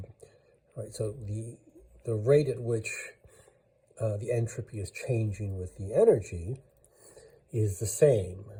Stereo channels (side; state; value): both; identical; correlation 1.00